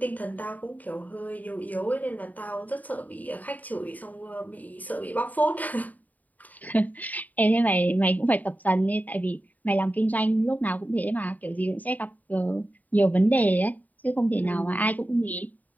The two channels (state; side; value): late; right; 0.078 ms